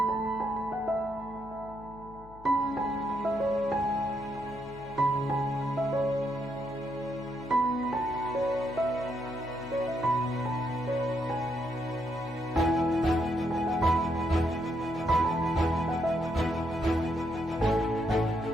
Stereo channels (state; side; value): noise; left; hum, 20 dB below the sound